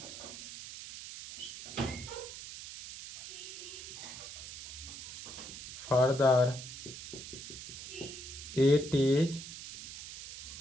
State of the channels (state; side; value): noise; right; hiss, 10 dB below the sound